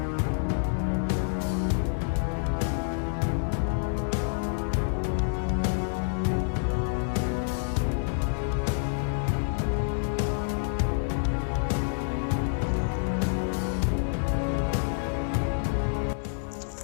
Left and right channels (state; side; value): silent; right; digital silence